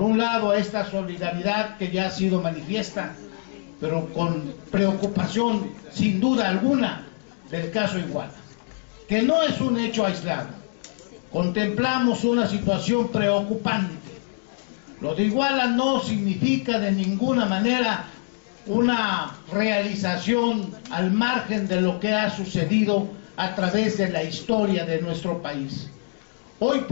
un lado, a esta solidaridad que ya ha sido manifiesta, pero con preocupación, sin duda alguna, del caso Iguala, que no es un hecho aislado. Contemplamos una situación preocupante. Lo de Iguala no significa de ninguna manera una realización al margen de lo que ha sucedido a través de la historia de nuestro país. Hoy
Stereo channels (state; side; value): silent; right; 62 dB below the other